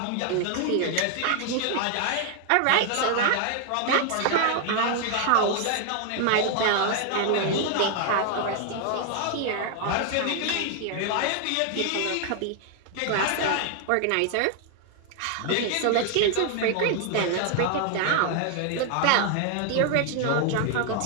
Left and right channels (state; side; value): different; both; correlation 0.00